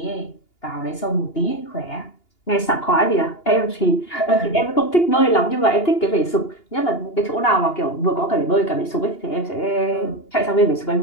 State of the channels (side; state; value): right; late; 2.8 ms